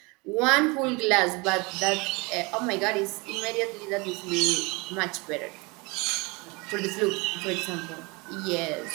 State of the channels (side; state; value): left; quieter; 27.2 dB